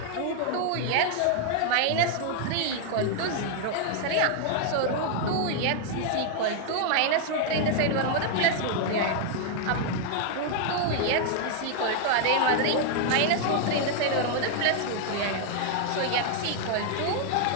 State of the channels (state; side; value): different; both; correlation 0.00